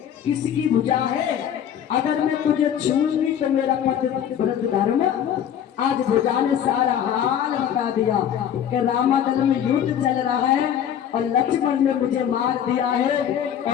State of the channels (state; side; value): quieter; right; 9.4 dB